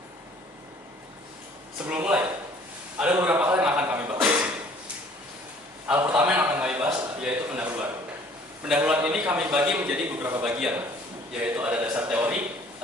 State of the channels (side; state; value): both; normal; correlation 0.55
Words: Sebelum mulai, ada beberapa hal yang akan kami bahas di sini. Hal pertama yang akan kami bahas yaitu pendahuluan. Pendahuluan ini kami bagi menjadi beberapa bagian, yaitu ada dasar teori,